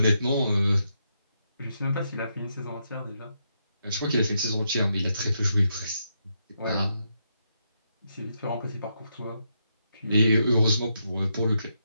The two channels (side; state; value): both; inverted; correlation -0.81